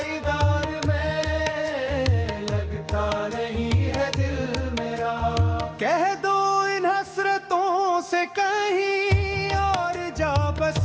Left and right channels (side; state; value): both; identical; correlation 1.00